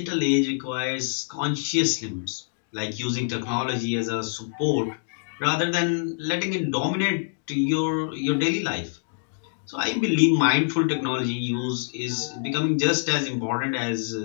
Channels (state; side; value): silent; right; digital silence